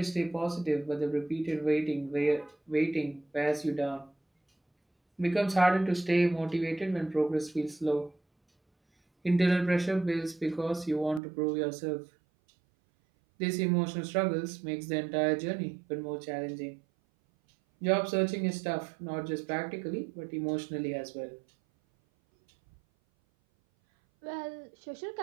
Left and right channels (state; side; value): drops out; left; at 11.2 s